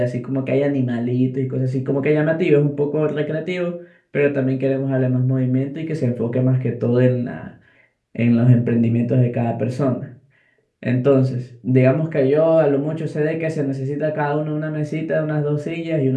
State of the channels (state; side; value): identical; both; correlation 1.00